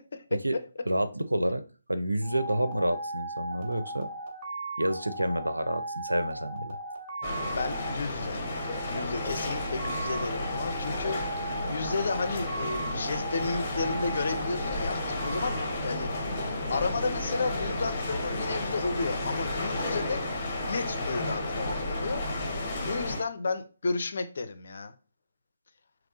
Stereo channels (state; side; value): inverted; both; correlation -0.82